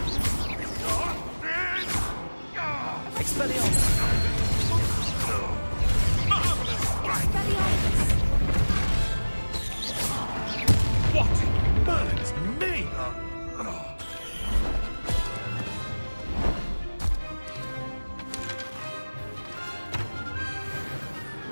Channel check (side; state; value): both; inverted; correlation -1.00